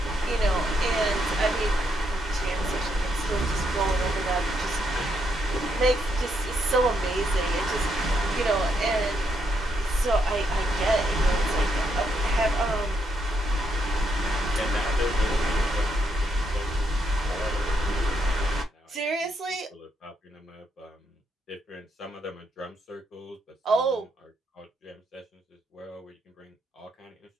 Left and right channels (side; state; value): both; normal; correlation 0.77